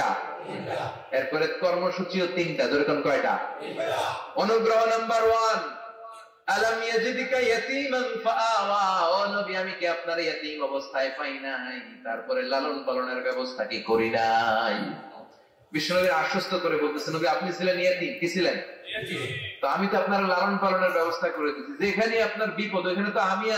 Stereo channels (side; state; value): both; identical; correlation 1.00